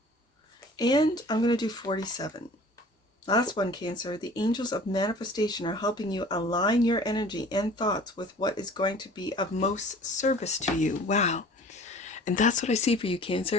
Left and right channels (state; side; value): normal; both; correlation 0.47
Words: And I'm going to do 47. Last one, Cancer. The angels of manifestation are helping you align your energy and thoughts with what is going to be of most service to you. Wow. And that's what I see for you,